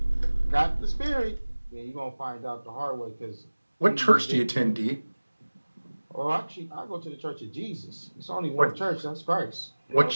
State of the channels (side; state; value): both; inverted; correlation -1.00